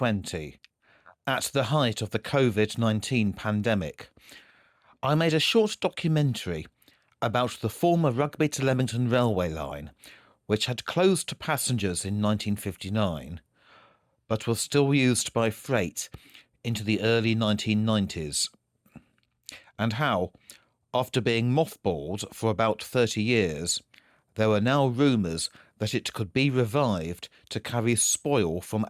at the height of the COVID-19 pandemic, I made a short documentary about the former Rugby to Leamington railway line, which had closed to passengers in 1959, but was still used by freight into the early 1990s, and how, after being mothballed for about 30 years, there were now rumours that it could be revived to carry spoil from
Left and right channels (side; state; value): both; identical; correlation 1.00